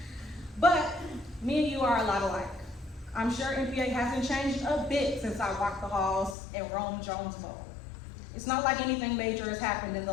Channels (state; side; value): drops out; right; at 6.4 s